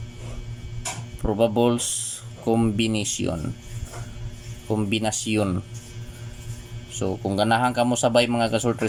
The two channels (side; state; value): both; identical; correlation 1.00